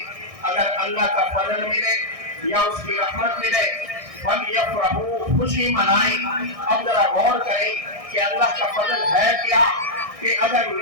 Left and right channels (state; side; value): late; left; 1.6 ms